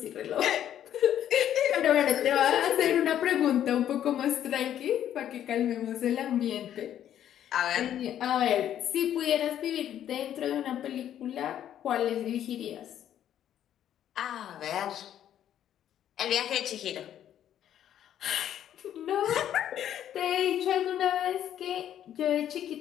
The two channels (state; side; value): quieter; right; 10.7 dB